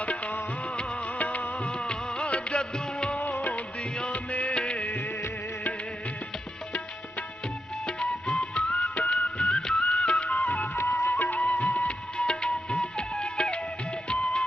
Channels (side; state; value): both; normal; correlation 0.86